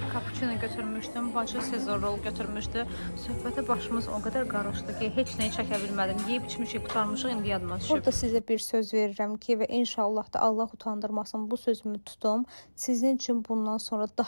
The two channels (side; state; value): both; inverted; correlation -1.00